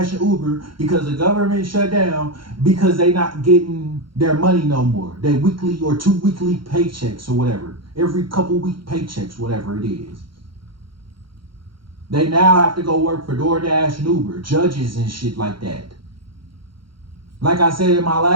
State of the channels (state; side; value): late; left; 0.73 ms